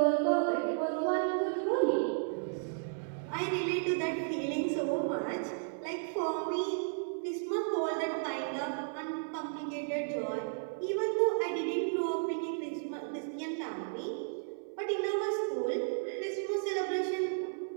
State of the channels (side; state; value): left; silent; 55 dB below the other